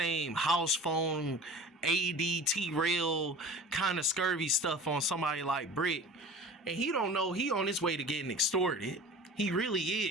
house phone, ADT rail kind of scurvy stuff on somebody like Bricc. And he don't know he on his way to getting extorted. He really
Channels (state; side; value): normal; both; correlation 0.39